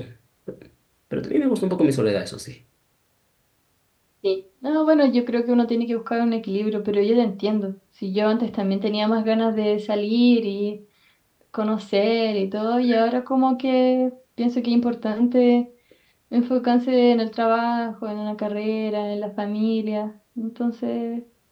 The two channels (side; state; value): both; identical; correlation 1.00